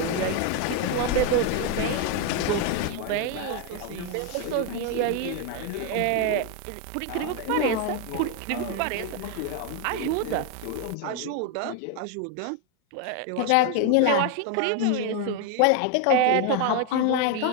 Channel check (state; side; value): different; both; correlation 0.01